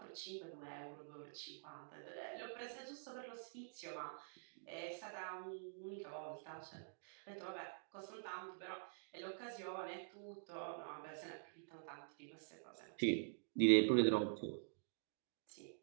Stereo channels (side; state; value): left; silent; digital silence